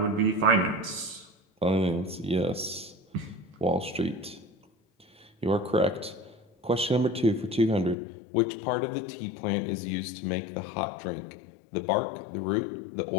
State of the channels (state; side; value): drops out; right; at 8.0 s